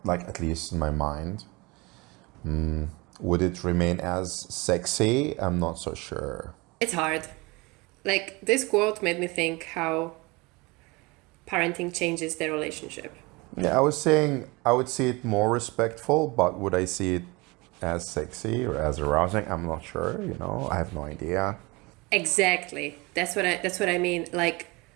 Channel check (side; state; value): left; quieter; 25.0 dB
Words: like at least in my mind. Would it remain as sexy? I'm not so sure. It's hard. Like, this quote made me think how parenting changes their relationship. Yeah, I was saying I would see it more respectful, but would I see it as sexy or as arousing? I'm not sure, I have no idea. Exactly. That's what I mean. Like